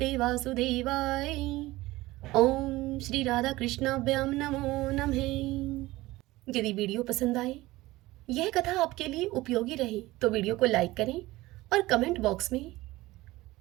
वासुदेवाय, ओम श्री राधा कृष्णाभ्याम नमो नमः। यदि वीडियो पसंद आए, यह कथा आपके लिए उपयोगी रही तो वीडियो को लाइक करें और कमेंट बॉक्स में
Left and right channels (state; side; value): quieter; left; 18.7 dB